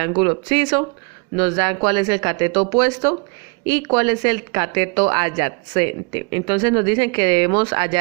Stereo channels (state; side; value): quieter; left; 32.6 dB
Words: obsiso, nos dan cuál es el cateto opuesto y cuál es el cateto adyacente. Entonces nos dicen que debemos